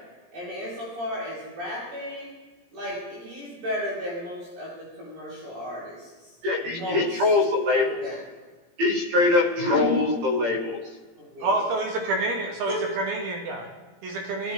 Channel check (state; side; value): late; left; 17 ms